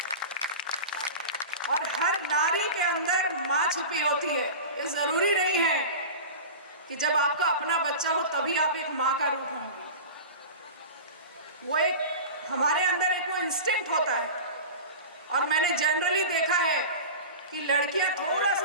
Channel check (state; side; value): inverted; both; correlation -0.31